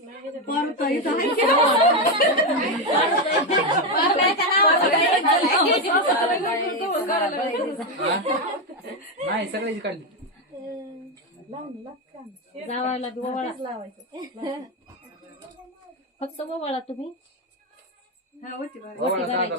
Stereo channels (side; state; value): both; normal; correlation 0.08